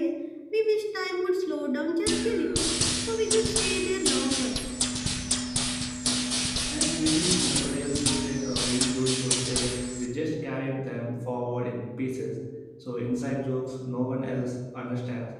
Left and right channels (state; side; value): identical; both; correlation 1.00